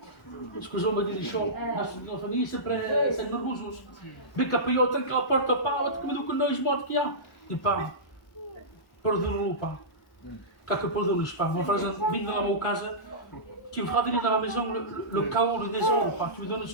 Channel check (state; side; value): normal; both; correlation -0.17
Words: Parce que on me dit des choses, dans la famille, c'est nerveux. Mais quand il y a autant que la porte pas, comme nous connaissons mort qu'il y a, il parle. Pardonne-le pas. Quand que pardonne-le pas. Mon frère vient dans ma casa, tu me feras venir dans la maison le chaos, le désordre, pas. Tu me donnes un